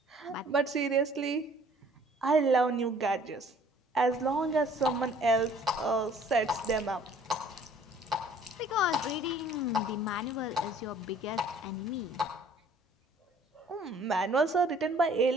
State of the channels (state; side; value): normal; both; correlation 0.55